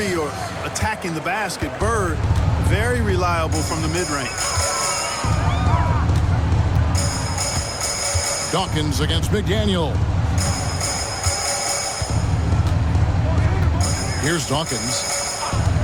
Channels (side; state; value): both; identical; correlation 1.00